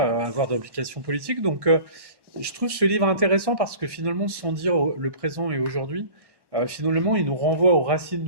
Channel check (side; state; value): left; late; 1.1 ms